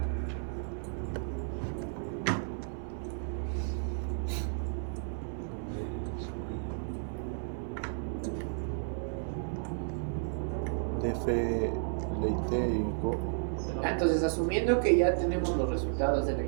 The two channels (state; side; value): silent; left; 56 dB below the other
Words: DF, LIT y Go. Entonces, asumiendo que ya tenemos los resultados de la